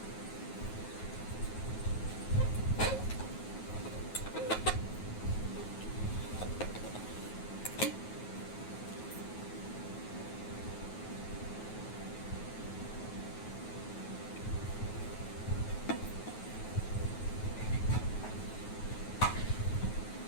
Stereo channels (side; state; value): right; late; 9.3 ms